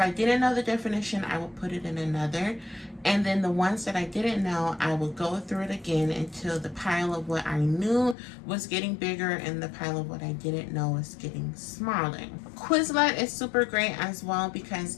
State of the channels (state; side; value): drops out; right; at 8.2 s